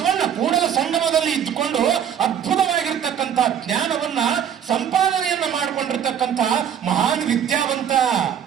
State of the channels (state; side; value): quieter; left; 8.9 dB